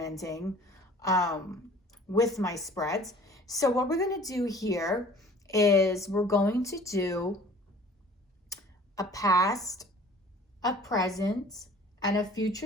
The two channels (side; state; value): both; normal; correlation 0.49